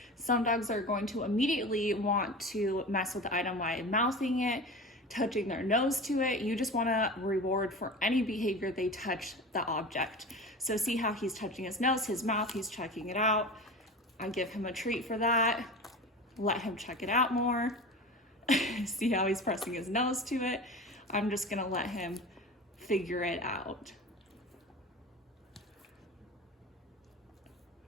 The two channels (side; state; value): both; normal; correlation 0.32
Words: Some dogs are going to immediately want to mess with the item by mouthing it, touching their nose to it. You just want to reward for any behavior they touch the object. So see how he's touching his nose, his mouth, he's checking it out. I give him a treat for that. Let him check it out more. See how he's pressing his nose to it. I'm just gonna let him figure it out.